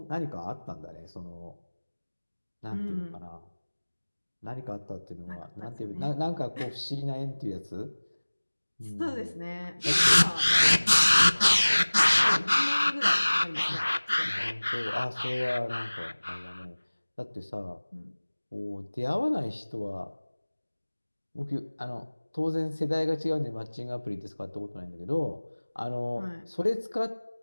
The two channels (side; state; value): both; inverted; correlation -1.00